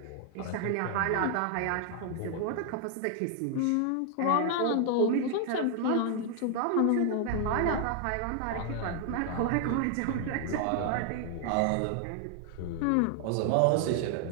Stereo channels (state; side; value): different; both; correlation 0.00